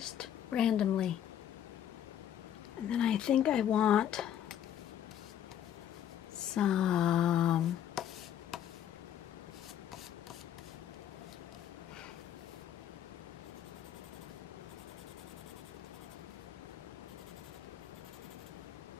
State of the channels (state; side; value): quieter; right; 10.2 dB